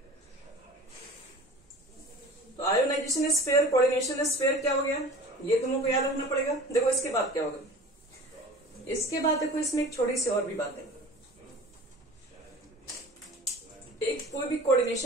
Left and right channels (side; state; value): both; normal; correlation 0.41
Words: तो आयोनाइजेशन स्फीयर, कोऑर्डिनेशन स्फीयर क्या हो गया, ये तुमको याद रखना पड़ेगा। देखो इसके बाद क्या होगा, इसके बाद देखो इसमें एक छोटी सी और भी बात है। एक कोई भी